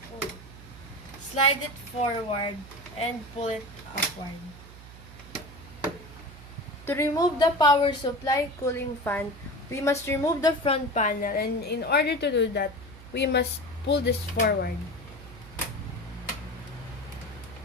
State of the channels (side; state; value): right; noise; hum, 17 dB below the sound